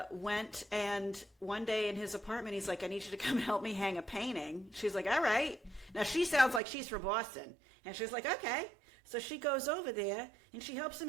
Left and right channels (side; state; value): left; drops out; at 6.6 s